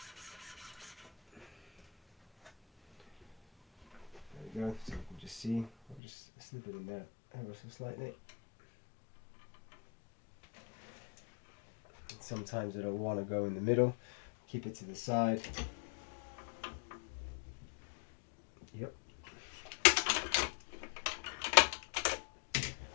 There we go, so you can just see, I'll just slip it in there ever so slightly. And sometimes I don't want to go in the middle, keep it to the side. Yep.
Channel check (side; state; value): right; drops out; at 6.0 s